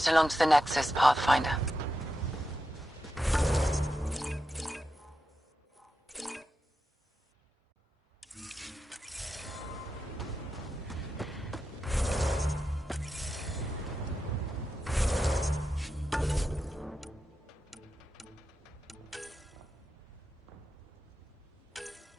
along to the Nexus, Pathfinder.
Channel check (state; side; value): normal; both; correlation 0.88